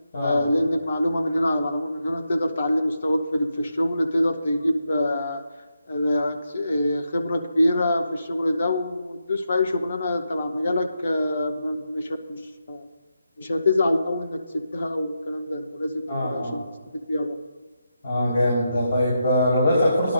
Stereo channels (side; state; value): both; inverted; correlation -0.85